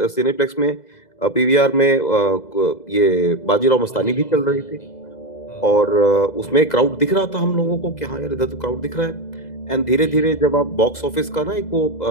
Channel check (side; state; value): right; late; 2.0 ms